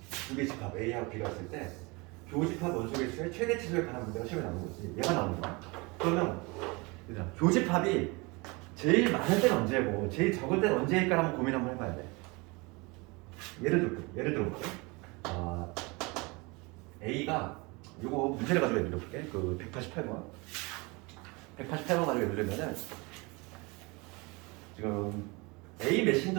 두 개 집합 A하고 B가 있을 때 교집합 원소 개수의 최대 치수에 관한 문제가 시험에 나오는 거지. 얘가 나오는 거야. 그러면 교집합이 제일 많을 때는 언제고 제일 적을 때는 언제일까 한번 고민 한번 해봐야 돼. 예를 들어볼게. A가 요거 문제를 가지고 예를 들어볼게. 그 188번 가지고 예를 들면은 지금 A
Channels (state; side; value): quieter; left; 26.7 dB